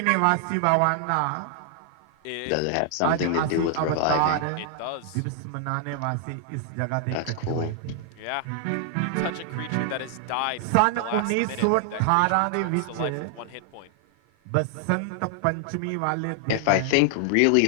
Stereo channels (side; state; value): both; different; correlation 0.00